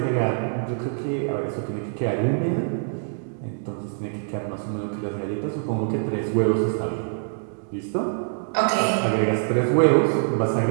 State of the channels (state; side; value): silent; left; 62 dB below the other